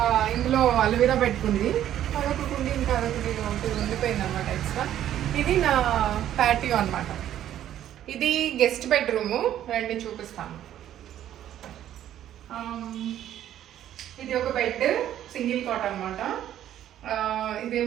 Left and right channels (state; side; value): quieter; left; 11.5 dB